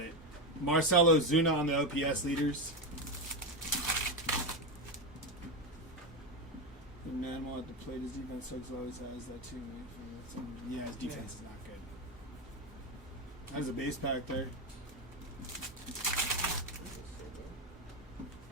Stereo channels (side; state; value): both; normal; correlation 0.12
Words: it. Marcelo Zuna on the OPS leaders. The animal at the plate, his defense sucks, always has that too. Yeah, his defense is not good. There's a base pack there.